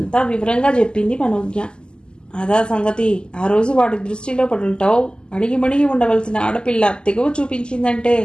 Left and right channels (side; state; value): right; late; 0.048 ms